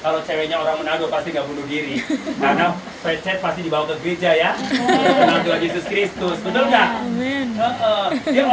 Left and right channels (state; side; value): identical; both; correlation 1.00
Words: kalau ceweknya orang Manado pasti nggak bunuh diri, karena pecet pasti dibawa ke gereja ya. Kenal Tuhan Yesus Kristus, betul nggak? Dia